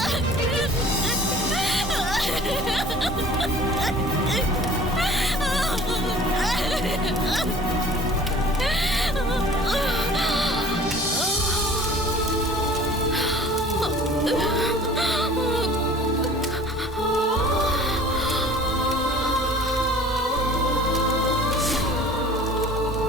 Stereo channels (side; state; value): both; normal; correlation 0.47